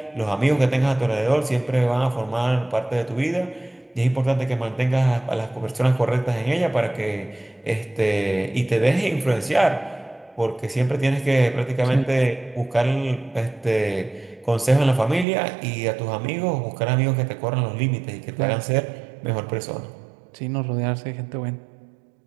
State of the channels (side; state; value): left; drops out; at 15.2 s